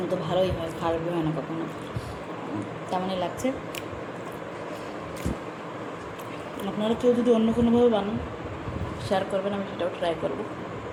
তো ভালোই হয়, খারাপই হয় না কখনো। তেমনই লাগছে। আপনারা কেউ যদি অন্য কোনোভাবে বানান শেয়ার করবেন, আমি সেটাও ট্রাই করবো।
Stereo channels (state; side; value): identical; both; correlation 1.00